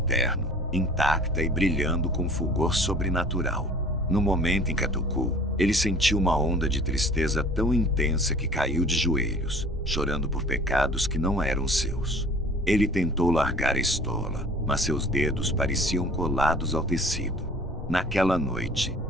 intacta e brilhando com fulgor sobrenatural. No momento em que a tocou, ele sentiu uma onda de tristeza tão intensa que caiu de joelhos, chorando por pecados que não eram seus. Ele tentou largar a estola, mas seus dedos pareciam colados ao tecido. Naquela noite,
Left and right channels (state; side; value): normal; both; correlation 0.48